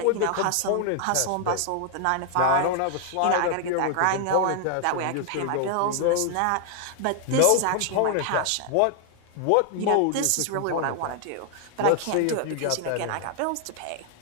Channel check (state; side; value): different; both; correlation 0.00